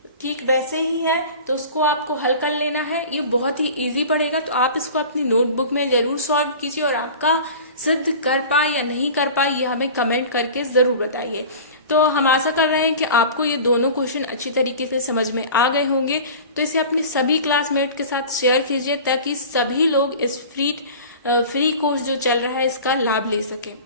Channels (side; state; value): both; inverted; correlation -0.38